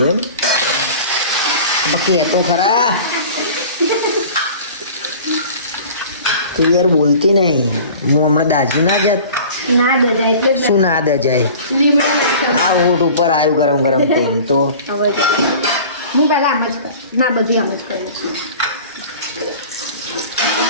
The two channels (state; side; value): inverted; both; correlation -0.42